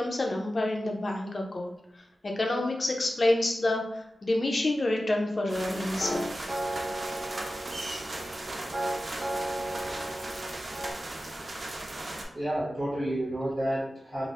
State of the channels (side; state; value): both; normal; correlation 0.94